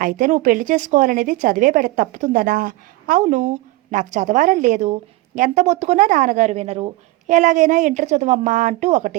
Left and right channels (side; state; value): left; quieter; 19.7 dB